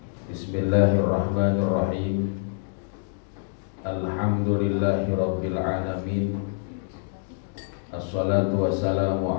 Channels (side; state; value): right; silent; digital silence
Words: Bismillahirrahmanirrahim. Alhamdulillahi rabbil alamin. Assalatu wassalamu